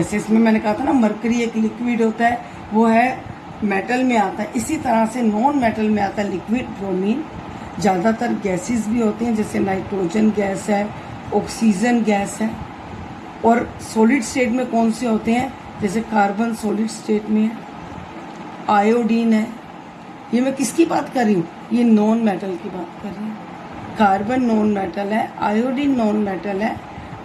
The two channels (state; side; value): identical; both; correlation 1.00